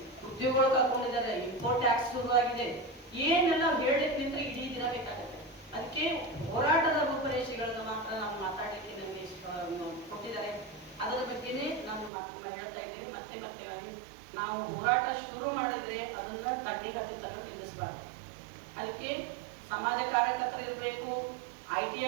ಉದ್ಯೋಗಗಳು ಕಳ್ಕೊಂಡಿದ್ದಾರೆ, ಇಂಪೋರ್ಟ್ ಟ್ಯಾಕ್ಸ್ ಶುರುವಾಗಿದೆ. ಏನೆಲ್ಲ ಹೇಳಲಿಕ್ಕೆ ನಿಂತ್ರೆ ಇಡೀ ದಿನ ಬೇಕಾಗುತ್ತೆ. ಅದಕ್ಕೆ ಹೋರಾಟದ ರೂಪರೇಷೆಗಳನ್ನ ಮಾತ್ರ ನಾವು ಮಾತಾಡಲಿಕ್ಕೆ ನಮಗೆ ಕೊಟ್ಟಿದ್ದಾರೆ. ಅದರ ಬಗ್ಗೆನೇ ನಾನು ಹೇಳ್ತಾ ಇದ್ದೀನಿ. ಮತ್ತೆ ನಾವು ಹೋರಾಟ ಶುರು ಮಾಡಿದ್ರೆ ಅದನ್ನ ತಡ್ಡಿ ಹತ್ತನ್ನು ನಿಲ್ಲಿಸಬಾರ್ದು. ಅದಕ್ಕೆ ಸಮಾಜ ಕಾರ್ಯಕರ್ತರು ಇರಬೇಕು,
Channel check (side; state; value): left; drops out; at 12.1 s